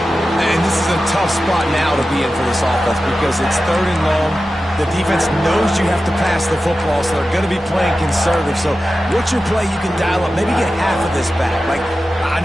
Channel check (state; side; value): normal; both; correlation 0.93